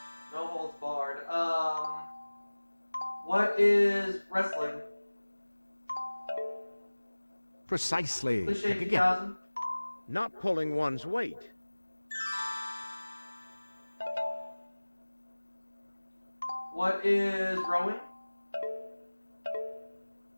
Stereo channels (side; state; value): both; inverted; correlation -1.00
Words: No holds barred. What is wrestling? Precisely. Cliche Pick again. 2000. Not pulling one's weight. What is rowing?